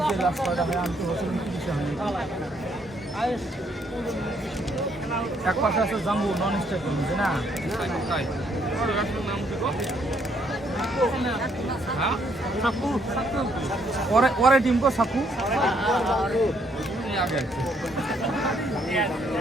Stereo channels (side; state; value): both; normal; correlation 0.70